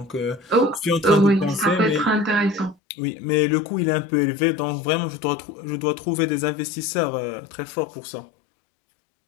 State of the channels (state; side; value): drops out; right; at 2.8 s